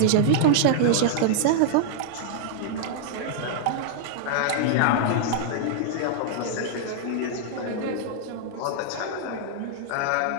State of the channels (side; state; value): both; different; correlation -0.01